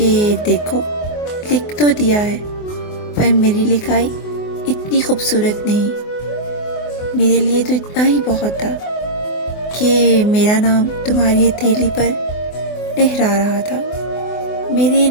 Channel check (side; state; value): right; late; 24 ms